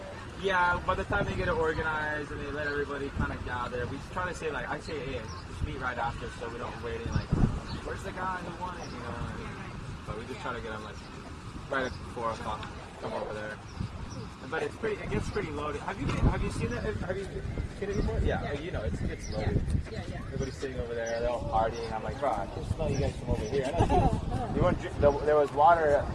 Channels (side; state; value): both; identical; correlation 1.00